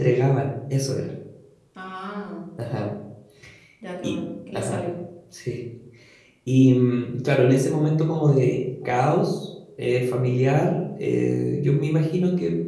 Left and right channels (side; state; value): both; identical; correlation 1.00